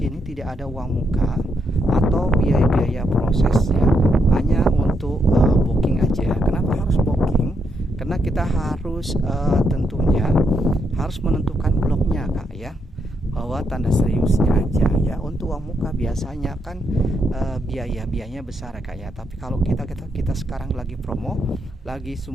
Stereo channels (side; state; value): both; normal; correlation 0.78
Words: tidak ada uang muka atau biaya-biaya proses ya, hanya untuk booking aja. Kenapa harus booking? Karena kita harus tentunya harus menentukan bloknya Kak ya, bahwa tanda seriusnya aja ya. Untuk uang muka biasanya kan biayanya besar Kak ya, tapi kalau kita sekarang lagi promo, lagi